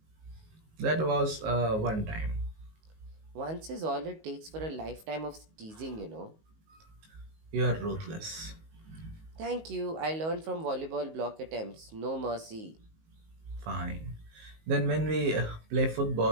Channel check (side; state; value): left; late; 19 ms